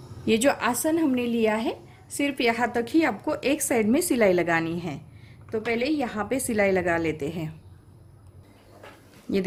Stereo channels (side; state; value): both; identical; correlation 1.00